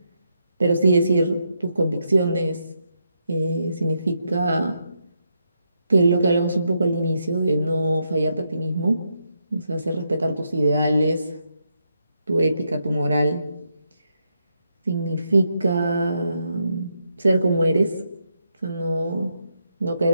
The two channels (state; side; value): inverted; both; correlation -0.81